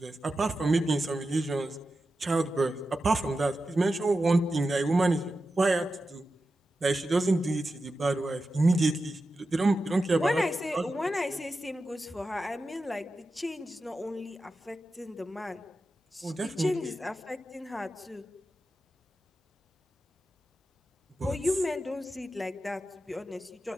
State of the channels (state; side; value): normal; both; correlation 0.91